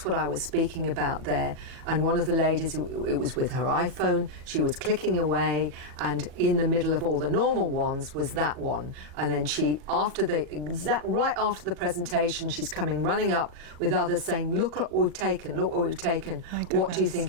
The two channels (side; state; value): left; late; 40 ms